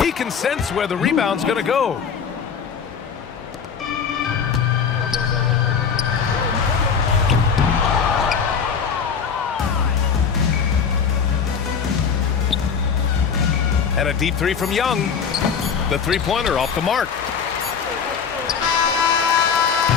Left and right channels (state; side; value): quieter; right; 6.6 dB